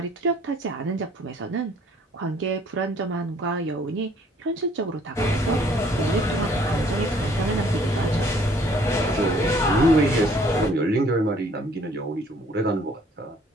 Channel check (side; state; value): both; normal; correlation 0.59